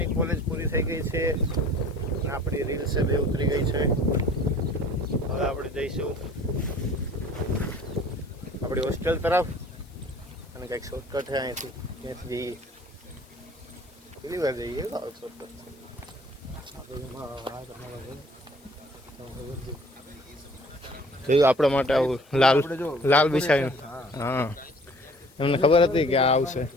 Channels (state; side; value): noise; left; hiss, 29 dB below the sound